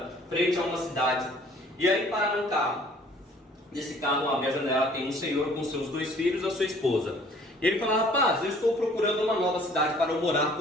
frente a uma cidade. E aí para um carro. Nesse carro, abre a janela, tem um senhor com seus 2 filhos e a sua esposa. E ele fala, rapaz, eu estou procurando uma nova cidade para eu morar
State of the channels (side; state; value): both; normal; correlation 0.55